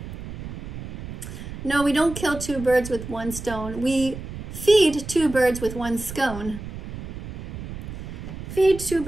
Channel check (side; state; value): right; noise; rumble, 9 dB below the sound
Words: No, we don't kill two birds with one stone. We feed two birds with one scone. Feed two